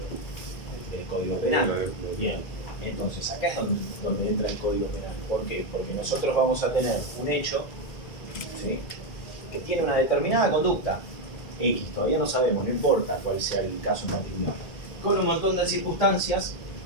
Del Código Penal. Bien. Entonces, acá es donde entra el Código Penal. ¿Por qué? Porque nosotros vamos a tener un hecho, ¿sí?, que tiene una determinada conducta. X, todavía no sabemos, no importa cuál sea el caso en particular, con un montón de circunstancias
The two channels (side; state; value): right; late; 1.9 ms